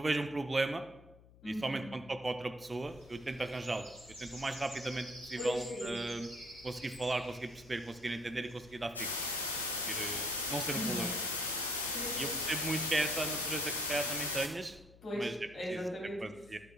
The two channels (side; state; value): left; noise; hum, 23 dB below the sound